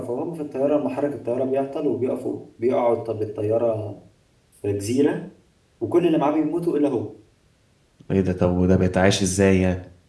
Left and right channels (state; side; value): identical; both; correlation 1.00